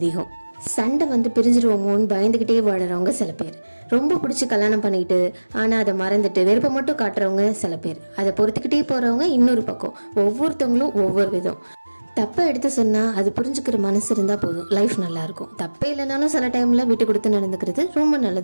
சண்டை பிரிஞ்சிருவோமோன்னு பயந்துக்கிட்டே வாடுறவங்க சில பேர், ரொம்ப பிடிச்சி கல்யாணம் பண்ணிக்கிட்டு ஆனால் அதை மறந்துட்டு வெறுப்பை மட்டும் காட்டுறவங்க சில பேர், அதை பொறுத்துக்கிட்டே போகிறவங்க இன்னொரு பக்கம். ஒவ்வொருத்தவங்களும் ஒவ்வொரு விதம். தப்பை எடுத்து சொன்னால் அது புரிஞ்சுக்கிற மனசு இருந்தால் போதும், லைஃப் நல்லாயிருக்கும். தப்பே இல்லைனாலும் சில டைமில் விட்டு கொடுத்து நடந்துக்கிறது ரொம்ப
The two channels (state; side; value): inverted; both; correlation -1.00